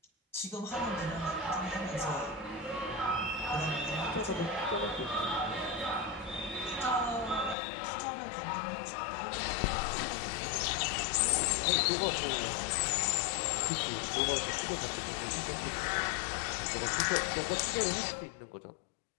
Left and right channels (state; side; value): drops out; right; at 7.6 s